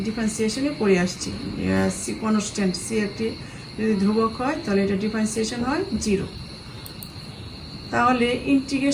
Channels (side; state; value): both; identical; correlation 1.00